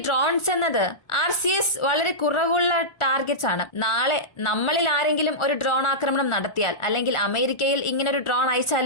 ഡ്രോൺസ് എന്നത് RCS വളരെ കുറവുള്ള ടാർഗറ്റ്സ് ആണ്. നാളെ നമ്മളിൽ ആരെങ്കിലും ഒരു ഡ്രോൺ ആക്രമണം നടത്തിയാൽ, അല്ലെങ്കിൽ അമേരിക്കയിൽ ഇങ്ങനെ ഒരു ഡ്രോൺ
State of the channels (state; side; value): late; right; 1.4 ms